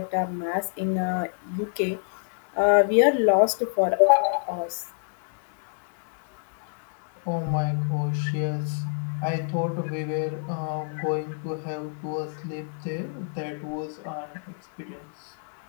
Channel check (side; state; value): right; silent; digital silence